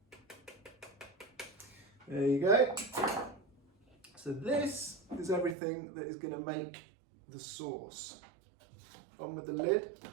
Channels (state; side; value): drops out; left; at 5.6 s